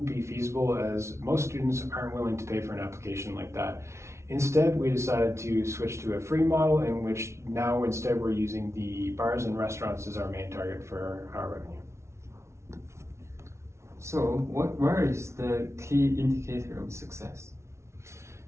be feasible, as most students aren't willing to pay for an application like that. Instead, we decided to switch to a free model, in which now instead we're using the bars and restaurants as our main target for our revenue. So where is the key indicator of success?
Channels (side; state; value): left; late; 0.13 ms